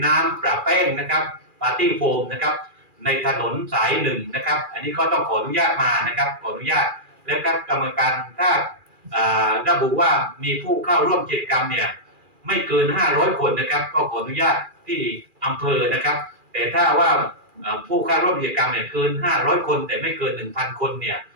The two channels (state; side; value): late; left; 2.4 ms